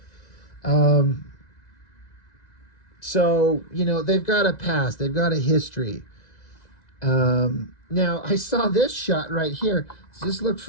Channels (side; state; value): right; late; 1.9 ms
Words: So, you know, they've got a past, they've got a history. Now, I saw this shot right here. Does this look